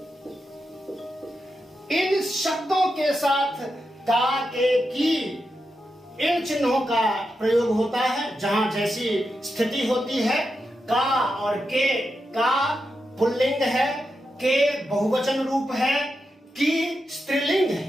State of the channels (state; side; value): normal; both; correlation 0.87